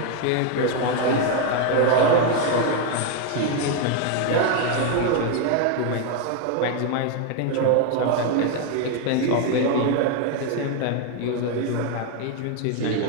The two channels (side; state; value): both; different; correlation 0.01